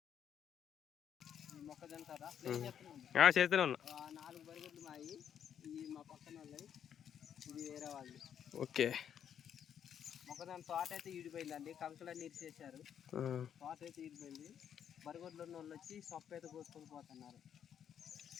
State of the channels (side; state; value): right; quieter; 8.9 dB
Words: మొక్కజొన్న కదా చేస్తూనే ఉన్నా. 4 బరిగొడ్లు మాయి. ఈ మా పక్కన వాళ్ళవి, ఇది వేరే వాళ్ళు. ఓకే. మొక్కజొన్న తోట అయితే ఈడిపోయిందండి. కంకులన్నీ ఇరిచేసారు. తోట అయితే ఈడిపోయింది. బరిగొడ్లు ఉన్న వాళ్ళు వచ్చి సొప్ప అయితే కోసుకొని పోతున్నారు.